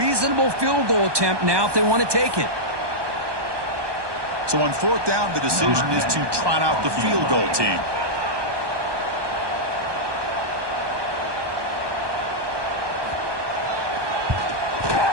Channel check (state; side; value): late; left; 1.2 ms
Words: field goal attempt now if they want to take it. So on fourth down, the decision is to trot out the field goal team.